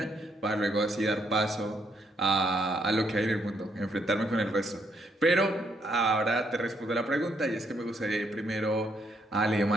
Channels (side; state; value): both; normal; correlation 0.73